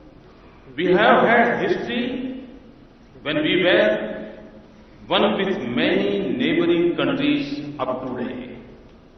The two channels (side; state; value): both; identical; correlation 1.00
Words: we have had history when we were one with many neighboring countries up to today.